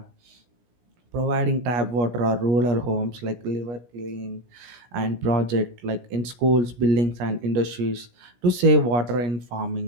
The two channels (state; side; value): late; left; 17 ms